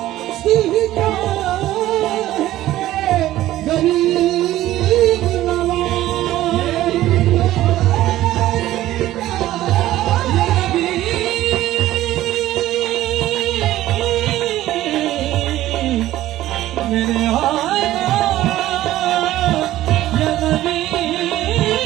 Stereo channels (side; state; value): left; quieter; 14.7 dB